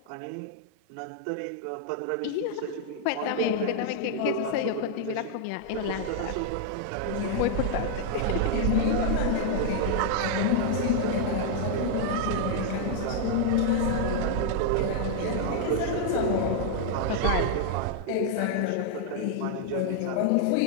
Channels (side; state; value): both; different; correlation 0.00